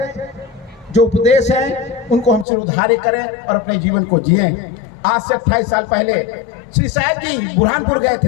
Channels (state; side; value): drops out; right; at 2.5 s